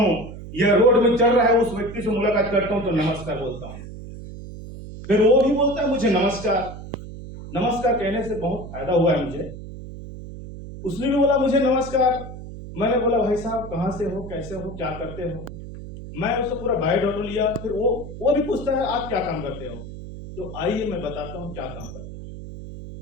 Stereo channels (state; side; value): noise; right; hum, 12 dB below the sound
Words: या रोड में चल रहा है उस व्यक्ति से मुलाकात करता हूं तो नमस्कार बोलता हूं। फिर वो भी बोलता है मुझे नमस्कार। नमस्कार कहने से बहुत फायदा हुआ है मुझे। उसने भी बोला मुझे नमस्कार। मैंने बोला भाई साहब कहां से हो, कैसे हो, क्या करते हो। मैं उससे पूरा बायोडाटा लिया। फिर वो भी पूछता है आप क्या काम करते हो। तो आइए मैं बताता हूं क्या काम करते हो।